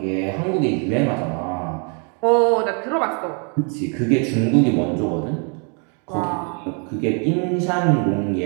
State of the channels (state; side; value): quieter; left; 38.0 dB